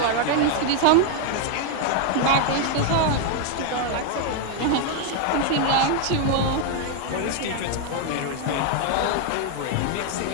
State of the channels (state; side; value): different; both; correlation 0.01